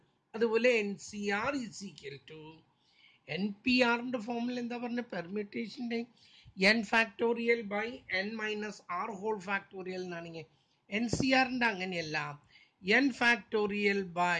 അതുപോലെ N C R is equal to, N P ആറിൻ്റെ ഫോമിൽ എന്താ പറഞ്ഞ, പെർമ്യൂട്ടേഷൻ്റെ N factorial by N minus R whole factorial എന്നാണെങ്കിൽ, എൻ സി ആറിൻ്റെ അങ്ങനെയല്ല. N factorial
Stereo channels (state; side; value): identical; both; correlation 1.00